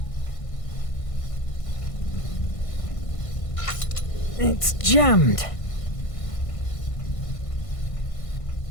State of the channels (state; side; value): late; right; 1.5 ms